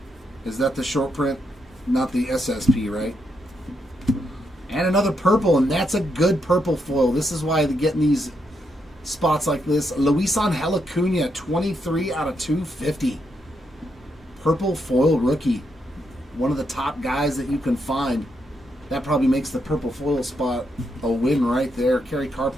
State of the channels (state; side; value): normal; both; correlation 0.80